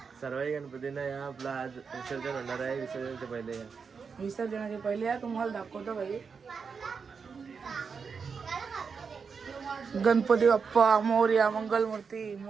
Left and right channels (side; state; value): left; quieter; 5.6 dB